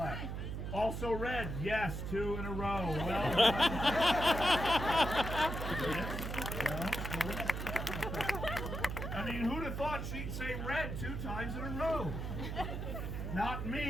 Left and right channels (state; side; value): noise; right; hum, 4 dB below the sound